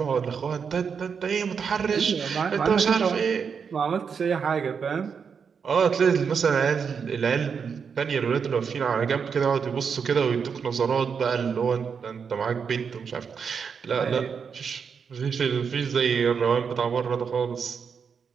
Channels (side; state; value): left; quieter; 6.3 dB